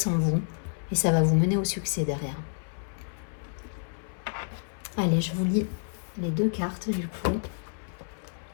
en vous et ça va vous mener au succès derrière. Allez, je vous lis les 2 cartes du coup.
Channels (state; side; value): silent; right; 58 dB below the other